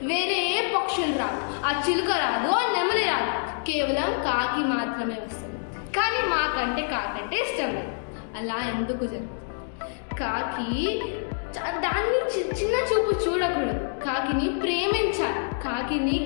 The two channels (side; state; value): right; silent; digital silence